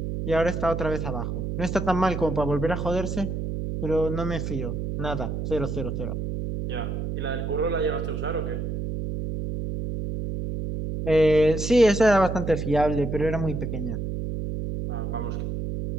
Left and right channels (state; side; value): noise; right; hum, 3 dB below the sound